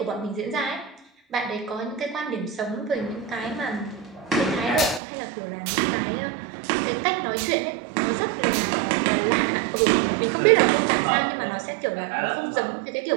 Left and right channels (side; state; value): left; drops out; at 5.0 s